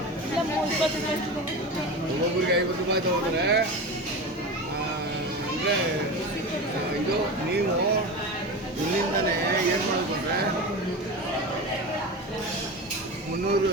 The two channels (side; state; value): both; normal; correlation 0.26